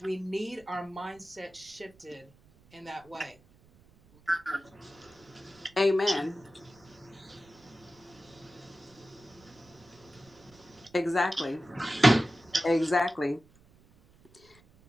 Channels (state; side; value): noise; right; rumble, 27 dB below the sound